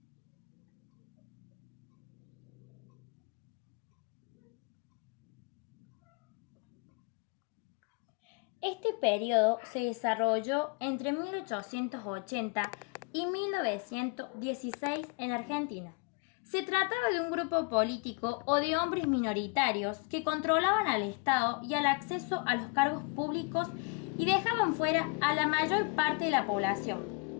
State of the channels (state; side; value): quieter; right; 31.0 dB